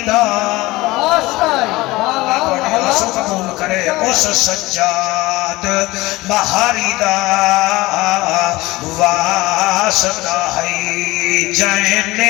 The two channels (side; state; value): right; quieter; 20.0 dB